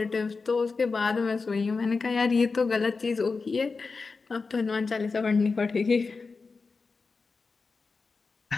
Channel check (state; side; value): quieter; right; 4.4 dB